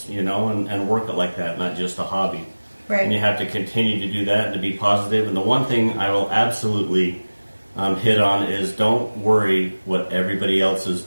and work it like that, not just a hobby. Right. And you have to continue to do that and to be positive. And the one thing I will absolutely hit on is don't worry what everybody else is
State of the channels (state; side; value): inverted; both; correlation -1.00